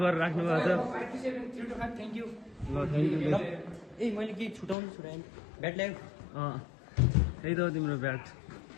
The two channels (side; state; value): right; drops out; at 4.8 s